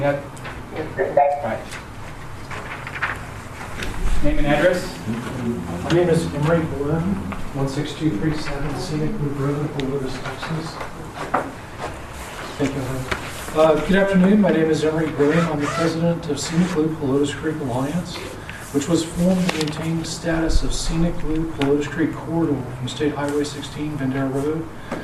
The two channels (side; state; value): both; identical; correlation 1.00